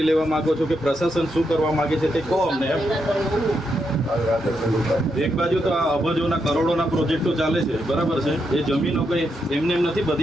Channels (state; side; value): normal; both; correlation 0.82